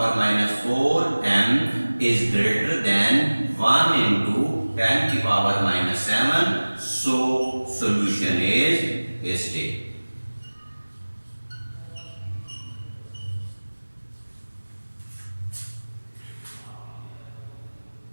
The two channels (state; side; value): inverted; both; correlation -1.00